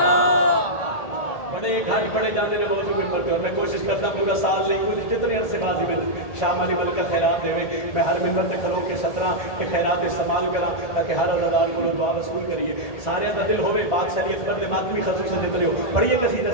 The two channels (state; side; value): late; right; 1.8 ms